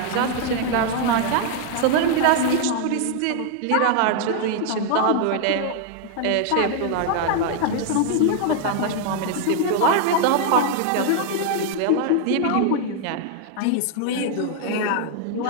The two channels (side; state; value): both; different; correlation 0.00